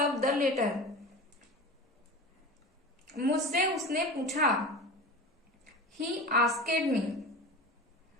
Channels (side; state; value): both; normal; correlation 0.32